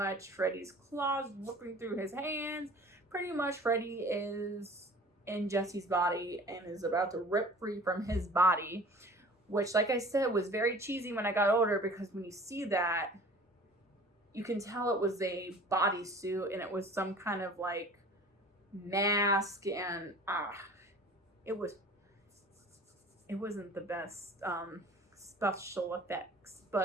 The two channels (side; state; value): both; normal; correlation 0.45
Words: Freddy's claws ripping through his hands. Pretty much Freddy is in Jesse's body and is about to rip free from his body. Which, like I said, was very cheesy when I got older, because when you see that, you can tell it was a bodysuit and it was some kind of like mask, and it wasn't the best special effects,